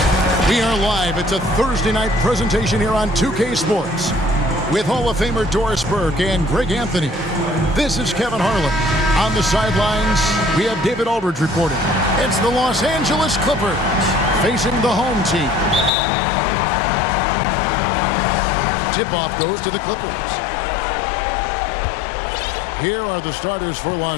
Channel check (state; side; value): drops out; right; at 15.9 s